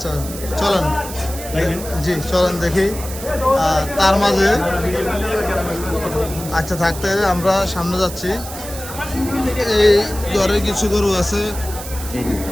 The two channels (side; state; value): right; noise; hiss, 11 dB below the sound